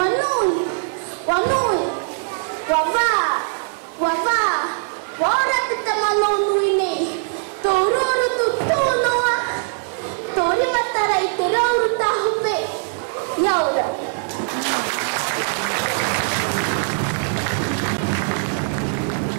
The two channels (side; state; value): left; silent; digital silence